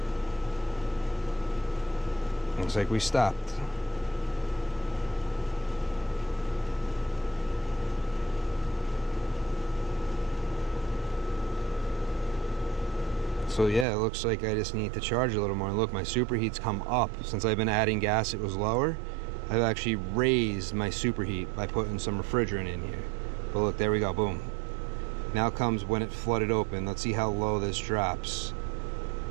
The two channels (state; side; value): drops out; left; at 13.9 s